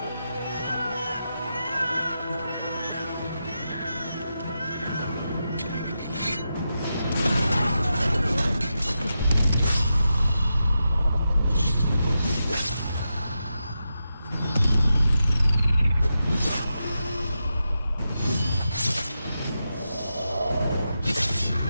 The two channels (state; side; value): inverted; both; correlation -0.88